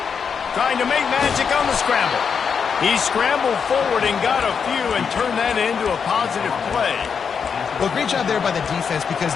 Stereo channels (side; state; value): right; quieter; 6.4 dB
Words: Trying to make magic on the scramble. He scrambled forward and got a few and turned that into a positive play. Well, great job there by the defense because